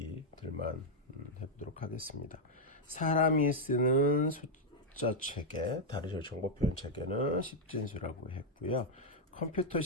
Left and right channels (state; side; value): normal; both; correlation -0.02